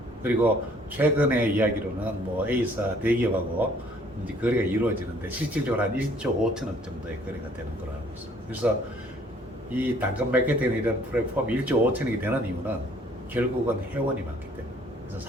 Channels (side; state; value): both; normal; correlation 0.60